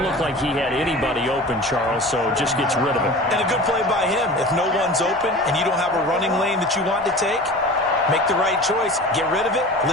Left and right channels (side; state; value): both; normal; correlation 0.37